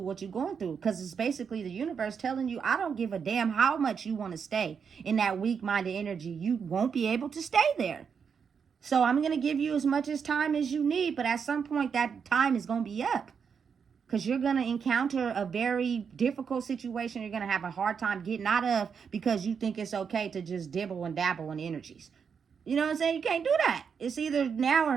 what you're going through because it's basically the universe telling you, I don't give a damn how much you want to stay in that weak-minded energy. You won't be able to stay there. So I'm going to give you as much as time as you need, but at some point that time is going to be up because you're going to encounter a very difficult situation you're going to have a hard time getting out of because you think it's okay to just dibble and dabble in energies. You know what I'm saying? You can't do that. It's either now or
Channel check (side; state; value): left; quieter; 6.5 dB